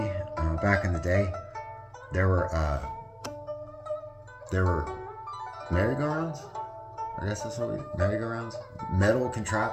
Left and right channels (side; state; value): both; identical; correlation 1.00